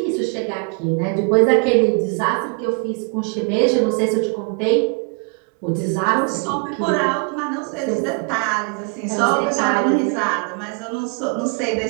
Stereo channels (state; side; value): quieter; left; 37.2 dB